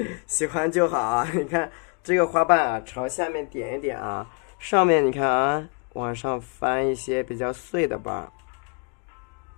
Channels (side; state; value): right; quieter; 37.2 dB